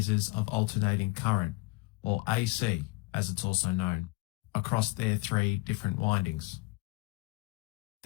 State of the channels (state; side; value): quieter; right; 23.2 dB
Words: of alternating current, or AC as it's also known, across their three different windings.